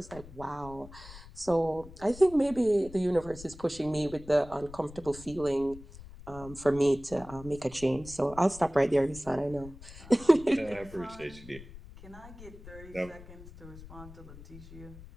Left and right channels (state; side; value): noise; left; rumble, 16 dB below the sound